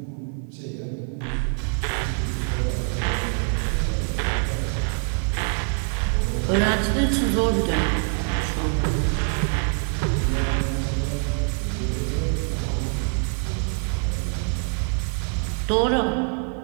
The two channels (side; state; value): left; quieter; 38.6 dB